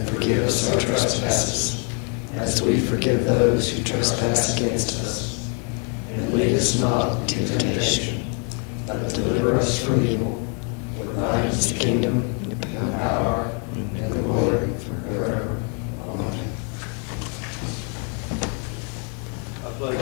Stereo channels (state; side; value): quieter; right; 38.8 dB